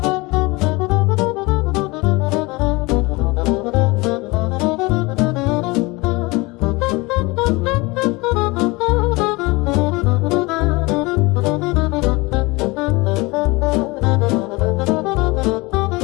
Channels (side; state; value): right; quieter; 24.0 dB